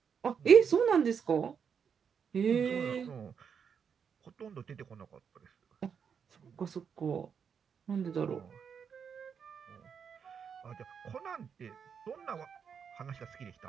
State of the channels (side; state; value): left; quieter; 6.9 dB